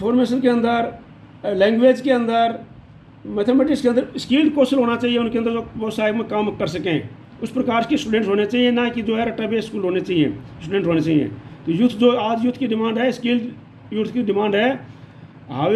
के अंदर, लैंग्वेज के अंदर, मैथमेटिक्स के अंदर स्किल्ड कौशल होना चाहिए उनके अंदर, जो व्यवसाय में काम कर सकें। उस प्रकार के स्टूडेंट्स होने चाहिए, ना कि जो है रट्टा बेस्ड स्कूल होने चाहिए, स्टूडेंट होने चाहिए। तो यूथ जो आज यूथ की डिमांड है, स्किल्ड यूथ की डिमांड है।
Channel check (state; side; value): identical; both; correlation 1.00